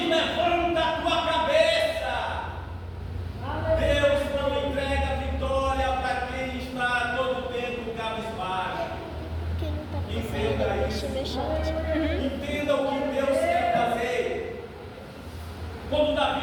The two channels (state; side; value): identical; both; correlation 1.00